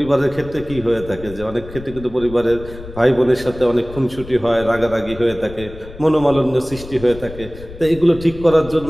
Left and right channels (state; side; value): noise; left; rumble, 15 dB below the sound